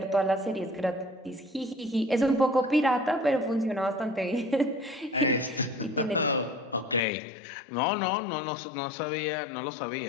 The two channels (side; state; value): right; drops out; at 7.0 s